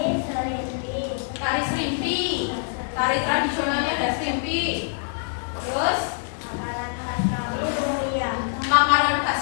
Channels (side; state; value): right; silent; digital silence